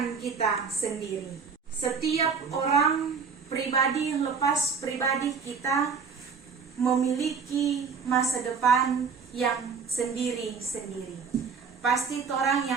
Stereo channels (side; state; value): left; quieter; 5.7 dB